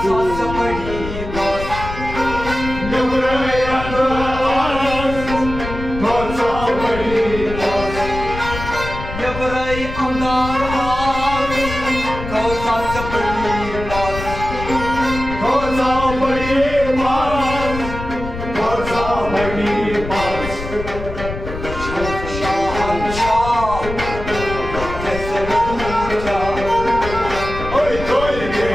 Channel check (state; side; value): noise; left; rumble, 8 dB below the sound